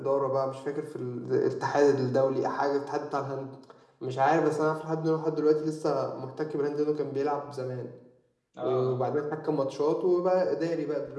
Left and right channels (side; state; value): both; identical; correlation 1.00